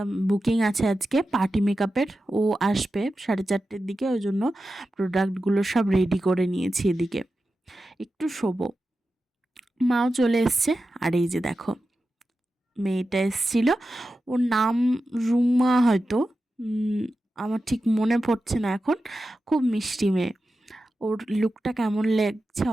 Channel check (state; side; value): normal; both; correlation 0.92